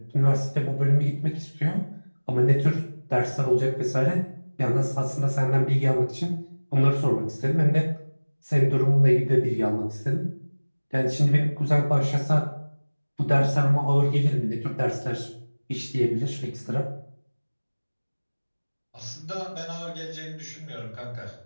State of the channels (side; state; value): both; inverted; correlation -1.00